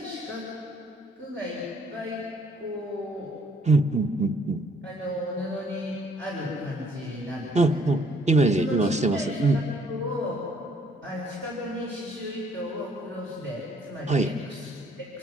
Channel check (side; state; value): both; normal; correlation 0.63